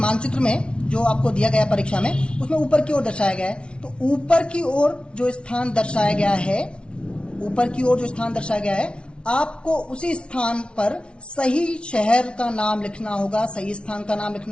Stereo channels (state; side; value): late; right; 0.058 ms